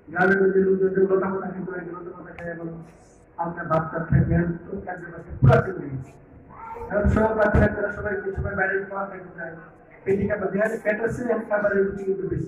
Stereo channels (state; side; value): identical; both; correlation 1.00